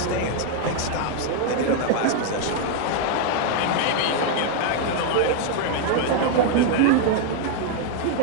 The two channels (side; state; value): both; different; correlation 0.00